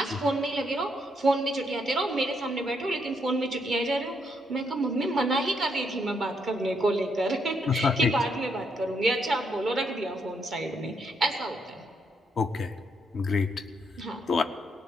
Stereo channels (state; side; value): normal; both; correlation 0.76